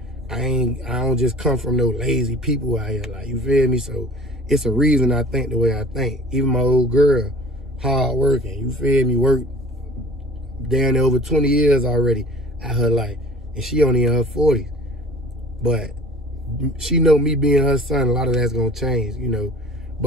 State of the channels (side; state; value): both; normal; correlation 0.46